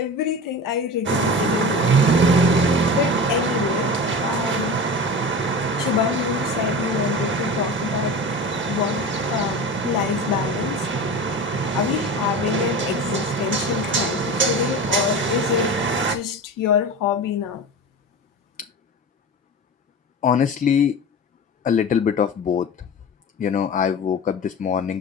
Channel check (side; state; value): both; normal; correlation 0.30